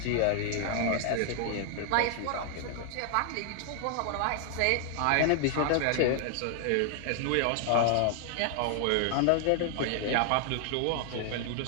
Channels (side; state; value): both; different; correlation 0.00